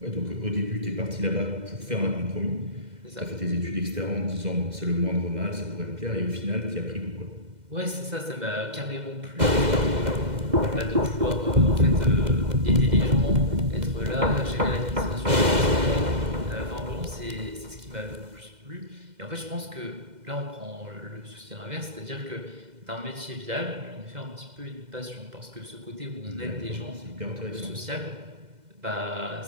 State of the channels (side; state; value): left; late; 2.0 ms